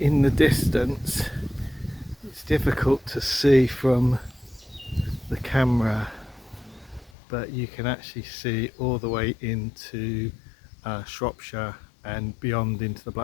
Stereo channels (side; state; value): right; drops out; at 7.1 s